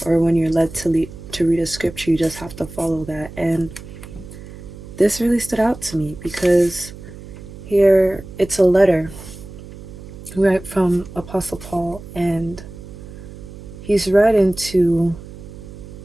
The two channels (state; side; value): noise; right; hum, 15 dB below the sound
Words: or when you're led to read a scripture, you just have to follow that. And this really stood out to me because here it's a letter right from Apostle Paul, and he's writing to